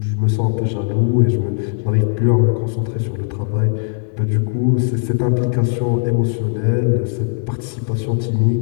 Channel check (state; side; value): silent; right; digital silence